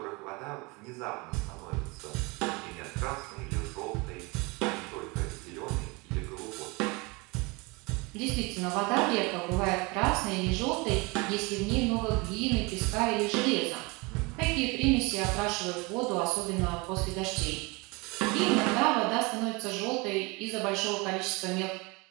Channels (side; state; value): left; quieter; 26.8 dB